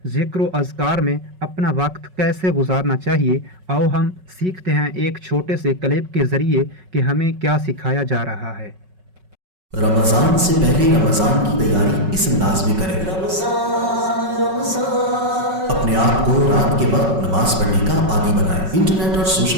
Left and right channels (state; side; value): late; left; 5.3 ms